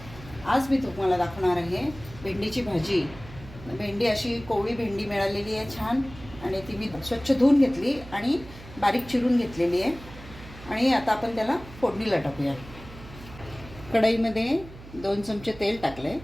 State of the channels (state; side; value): noise; right; hum, 17 dB below the sound